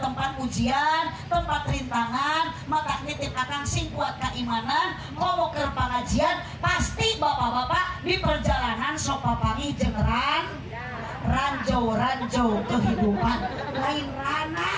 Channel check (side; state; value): both; identical; correlation 1.00